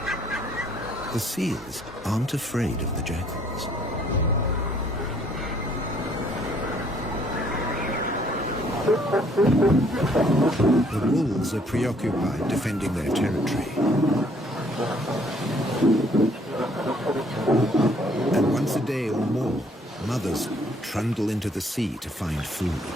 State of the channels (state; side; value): normal; both; correlation 0.63